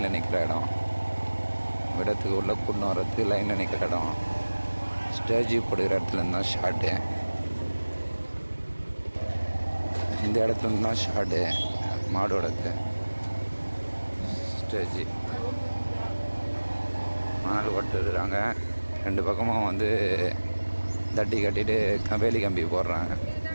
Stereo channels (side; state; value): both; inverted; correlation -1.00